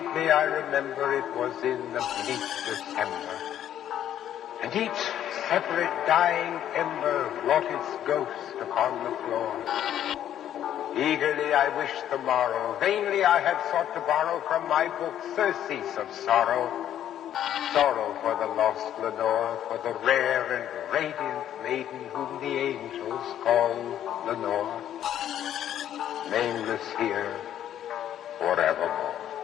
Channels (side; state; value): right; quieter; 10.9 dB